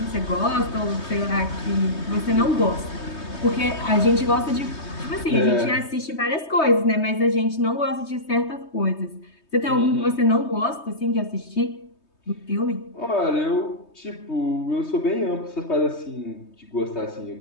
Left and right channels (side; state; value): right; late; 3.2 ms